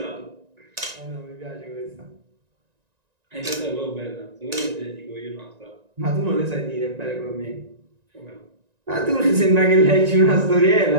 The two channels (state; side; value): late; left; 1.9 ms